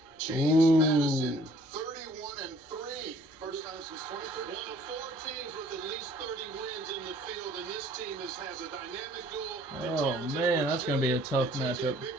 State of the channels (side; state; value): both; normal; correlation 0.57